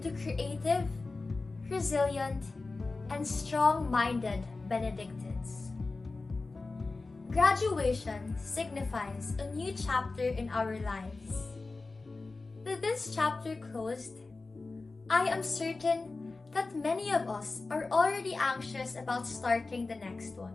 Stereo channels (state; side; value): quieter; right; 3.6 dB